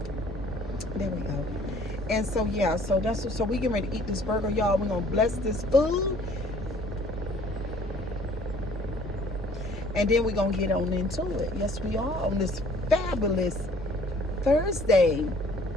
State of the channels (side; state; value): left; noise; hum, 17 dB below the sound